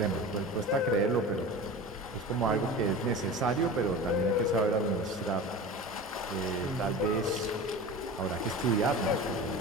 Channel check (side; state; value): both; normal; correlation 0.32